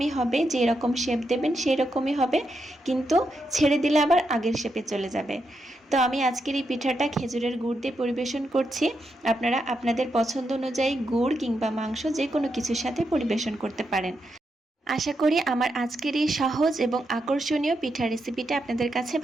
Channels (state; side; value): normal; both; correlation 0.84